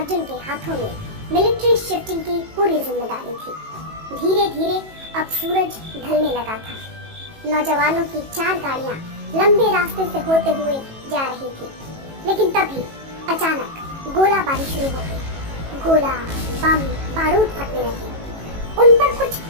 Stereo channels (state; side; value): late; left; 18 ms